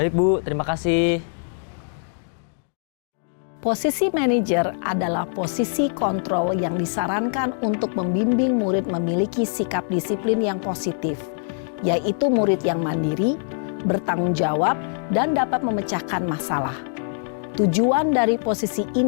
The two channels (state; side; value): silent; right; digital silence